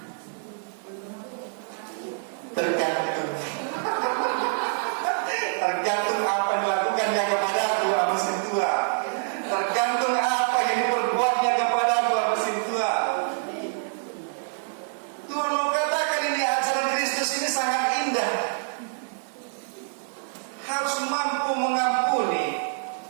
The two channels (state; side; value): silent; left; digital silence